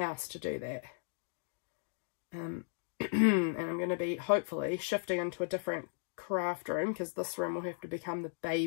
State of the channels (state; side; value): silent; right; digital silence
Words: to do that. And I'm going to be, hopefully, shifting into a different craft room, because this room will have to become the